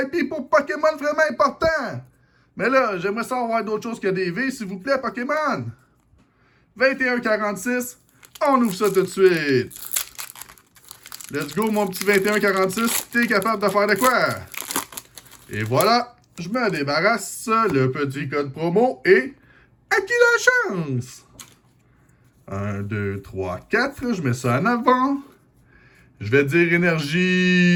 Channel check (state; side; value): identical; both; correlation 1.00